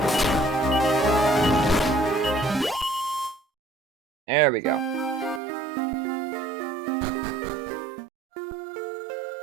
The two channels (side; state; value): left; drops out; at 5.4 s